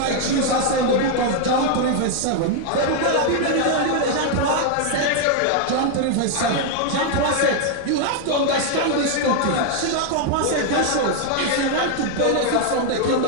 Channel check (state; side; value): different; both; correlation 0.00